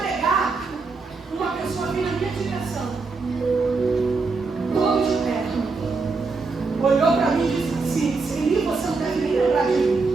uma pessoa veio na minha direção, todo de terno, olhou para mim e disse assim: Celi, você não deve nem lembrar de mim.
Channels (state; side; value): quieter; left; 4.1 dB